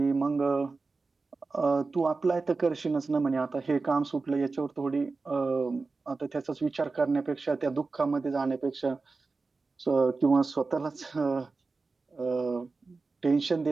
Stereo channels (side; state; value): left; quieter; 4.0 dB